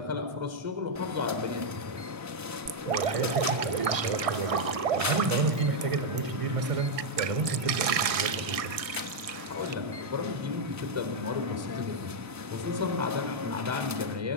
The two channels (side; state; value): left; late; 1.6 ms